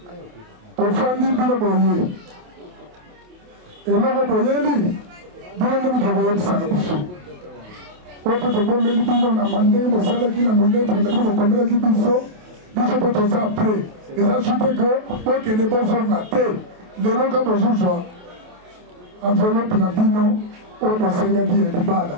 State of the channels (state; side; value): late; left; 28 ms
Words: to fandi bino boye eloko boyeli bino nde moto boyebisaka biso oyo mpe tobombeli bino na mandenge bosalaki na molebre na bino bokomelaki biso biso mpe toza apres eza sute ke bokende bozonga te lelo ka bozozwa enveloppe na bino oyo bosengaki ya